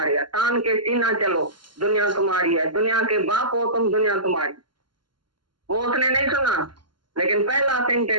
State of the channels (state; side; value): late; left; 0.72 ms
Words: है, तान के सीना चलो दुनिया तुम्हारी है, दुनिया के बाप हो तुम, दुनिया तुम्हारी। वो उसने नहीं सुना, लेकिन पहला